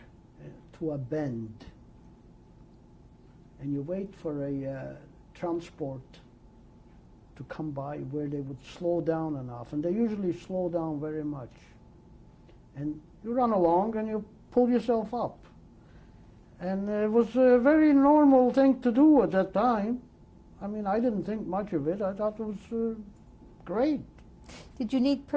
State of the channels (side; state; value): both; identical; correlation 1.00